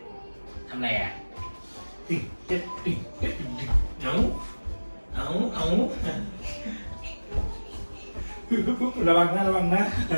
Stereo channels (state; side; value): inverted; both; correlation -1.00